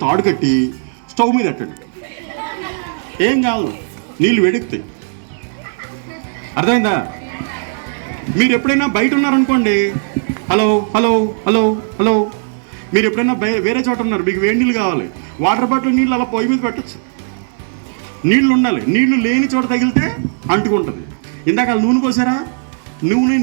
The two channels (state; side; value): silent; left; 69 dB below the other